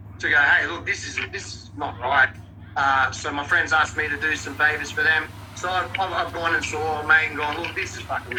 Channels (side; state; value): both; identical; correlation 1.00